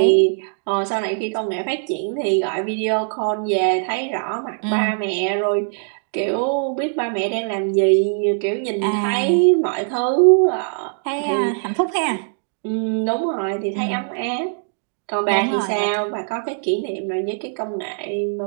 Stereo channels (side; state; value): left; silent; 65 dB below the other